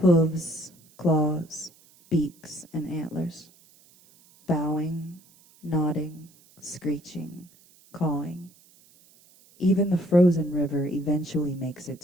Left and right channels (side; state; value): right; noise; hiss, 28 dB below the sound